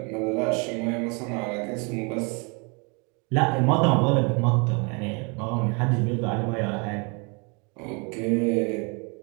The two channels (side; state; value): left; quieter; 32.6 dB